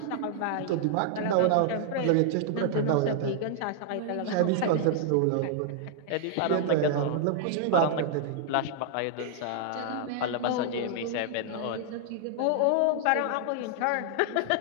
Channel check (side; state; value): both; different; correlation -0.01